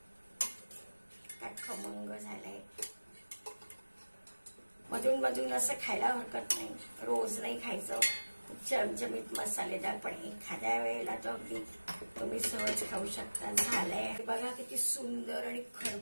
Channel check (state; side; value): inverted; both; correlation -1.00